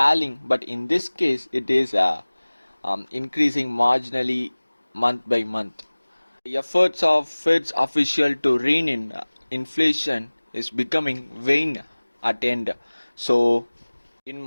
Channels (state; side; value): inverted; both; correlation -1.00